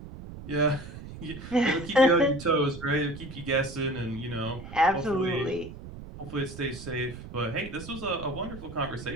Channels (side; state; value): right; noise; rumble, 13 dB below the sound